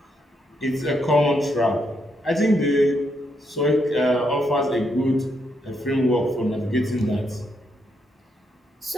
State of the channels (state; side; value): normal; both; correlation 0.78